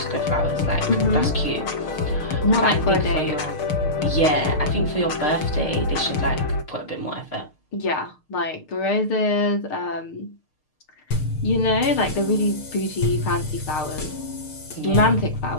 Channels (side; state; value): right; late; 6.6 ms